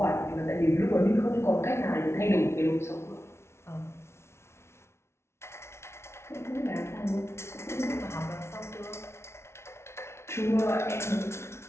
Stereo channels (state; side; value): late; right; 0.13 ms